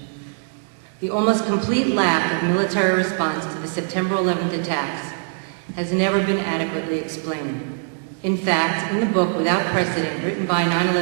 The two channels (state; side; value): silent; left; 64 dB below the other